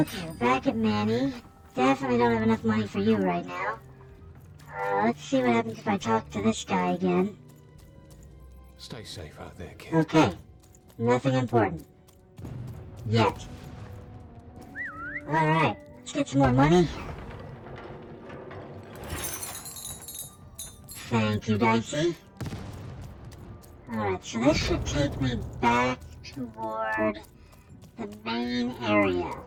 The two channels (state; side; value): identical; both; correlation 1.00